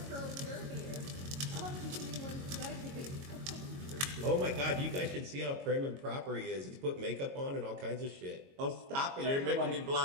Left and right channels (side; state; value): left; late; 22 ms